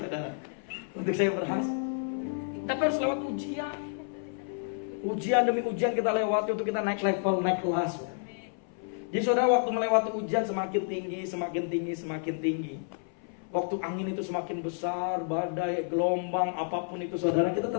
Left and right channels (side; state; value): right; silent; 58 dB below the other